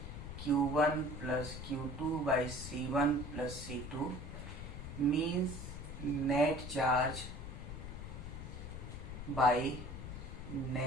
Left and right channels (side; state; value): left; noise; rumble, 8 dB below the sound